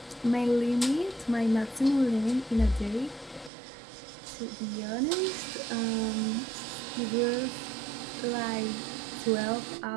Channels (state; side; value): drops out; left; at 3.5 s